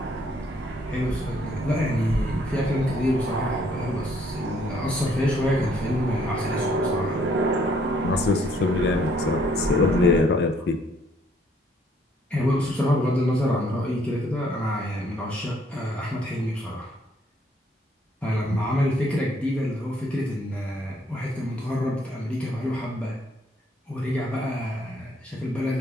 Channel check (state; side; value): normal; both; correlation 0.65